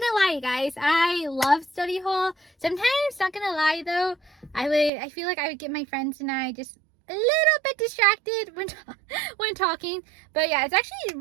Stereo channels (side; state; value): left; drops out; at 4.9 s